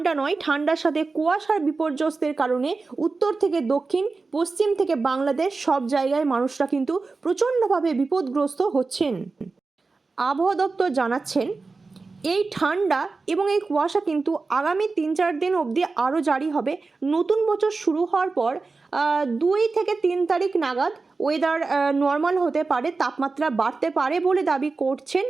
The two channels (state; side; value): quieter; left; 4.0 dB